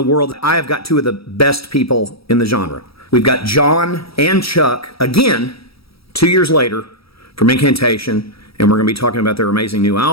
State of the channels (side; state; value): right; late; 0.76 ms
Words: world. I have got two of the best people in the genre. We've got John and Chuck, again, 2 years later, from Incantation, and we're going to be talking about their amazing new